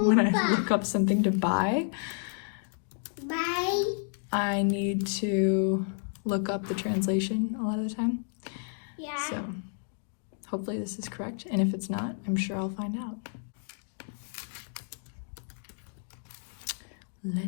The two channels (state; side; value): silent; right; 57 dB below the other